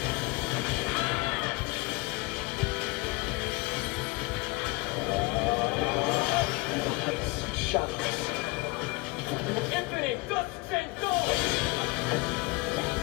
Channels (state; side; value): quieter; right; 23.6 dB